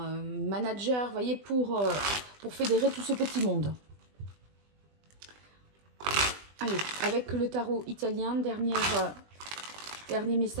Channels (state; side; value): late; left; 20 ms